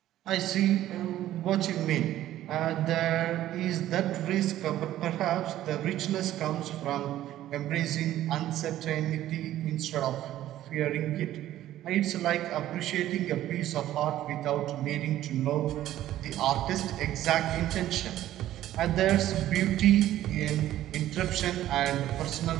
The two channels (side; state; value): left; quieter; 13.3 dB